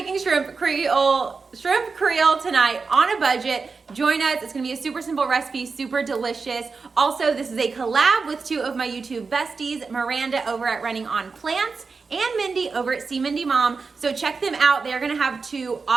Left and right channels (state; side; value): quieter; left; 4.6 dB